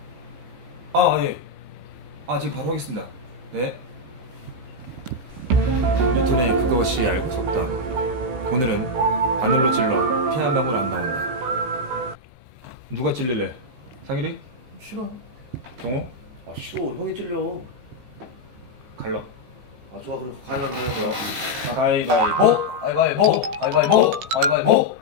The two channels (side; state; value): left; late; 16 ms